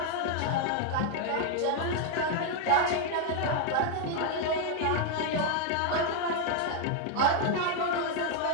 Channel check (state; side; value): different; both; correlation 0.01